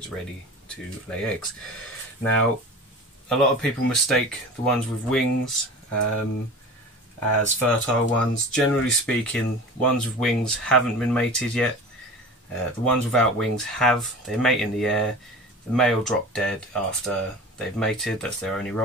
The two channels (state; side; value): normal; both; correlation 0.35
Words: ready to lay eggs. Now, a lot of people mistake the ones with wings as fertile ones. Generally speaking, ones with wings haven't been mated yet. The ones without wings have. They mate in the air. The male drop dead after they've mated. That's their only